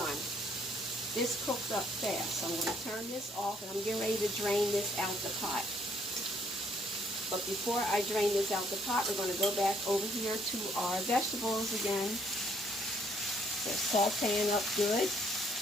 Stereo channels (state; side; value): normal; both; correlation 0.66